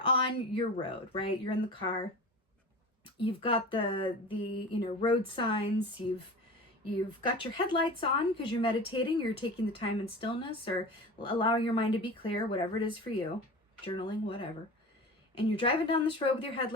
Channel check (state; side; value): normal; both; correlation 0.34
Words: on your road, right? You're in the car. You've got the road signs. You've got your headlights on because you're meditating. You're taking the time in stillness or allowing your mind to be clear, whatever it is for you, journaling, whatever. And you're driving down this road with your